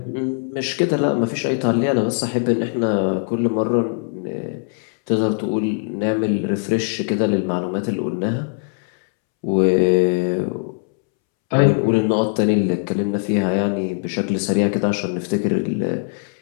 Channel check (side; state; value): right; silent; 65 dB below the other